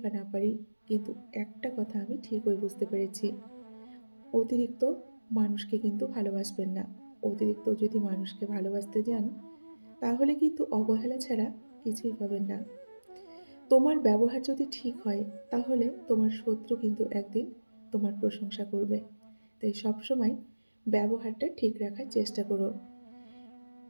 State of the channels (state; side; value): inverted; both; correlation -1.00